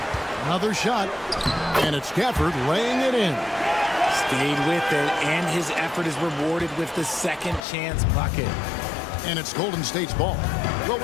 Another shot. And it's Gafford laying it in. Stayed with it, and his effort is rewarded with the second chance bucket. And it's Golden State's ball. Well,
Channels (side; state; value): right; drops out; at 7.7 s